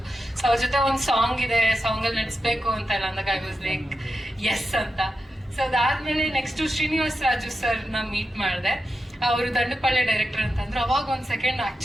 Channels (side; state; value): both; normal; correlation 0.89